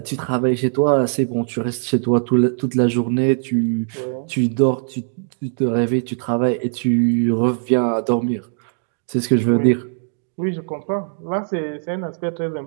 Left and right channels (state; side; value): silent; left; digital silence